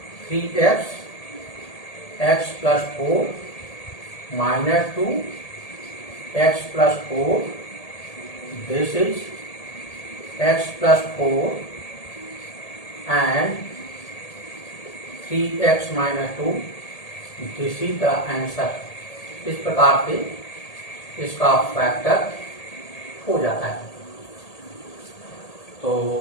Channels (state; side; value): late; right; 1.8 ms